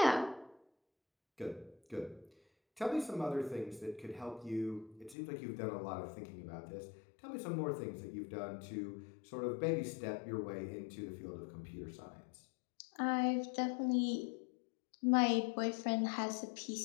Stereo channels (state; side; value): drops out; right; at 5.2 s